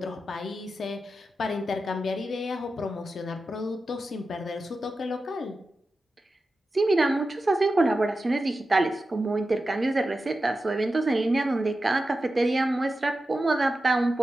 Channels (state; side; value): normal; both; correlation 0.92